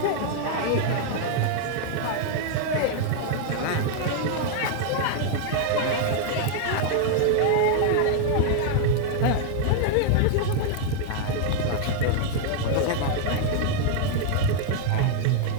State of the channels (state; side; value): different; both; correlation 0.00